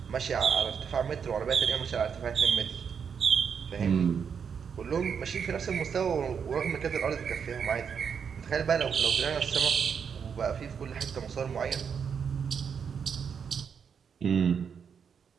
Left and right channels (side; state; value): left; quieter; 6.9 dB